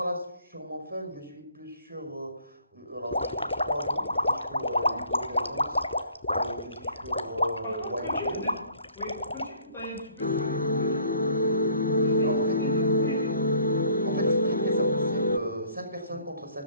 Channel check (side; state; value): both; inverted; correlation -0.56